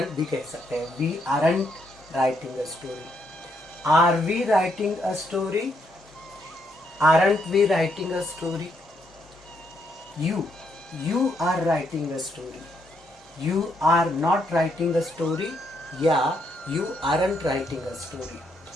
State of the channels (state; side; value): normal; both; correlation 0.75